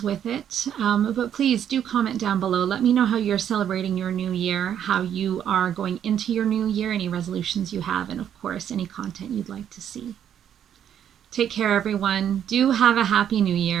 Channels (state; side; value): quieter; left; 9.5 dB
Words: with it. But please do comment down below. Let me know how you're celebrating your new year, how you are going into your new year, any resolutions you have, and of course, any content you'd like to see. Take care, everyone. Do have a happy new